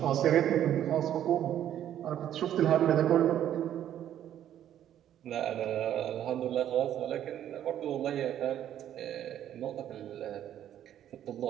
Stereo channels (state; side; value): quieter; left; 11.0 dB